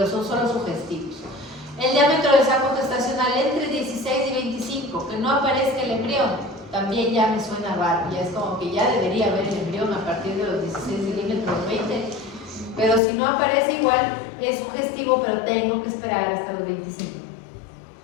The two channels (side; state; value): right; drops out; at 13.0 s